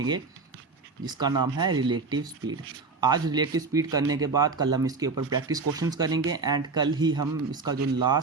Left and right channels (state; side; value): quieter; left; 4.2 dB